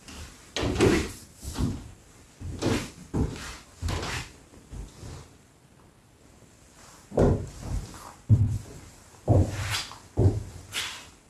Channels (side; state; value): both; identical; correlation 1.00